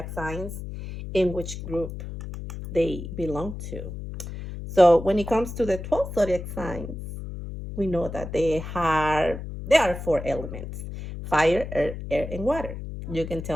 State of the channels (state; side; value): noise; left; hum, 9 dB below the sound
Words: signs, in which group they belong to. So when it comes to the 12 zodiac signs, we know that there are four elements: fire, earth, air, and water. You can